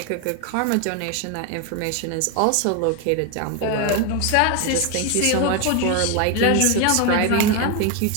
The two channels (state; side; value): different; both; correlation 0.01